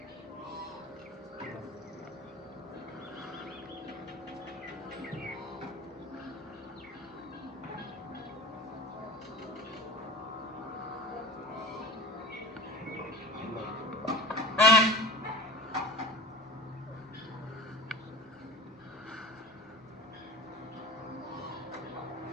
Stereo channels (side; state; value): both; normal; correlation 0.35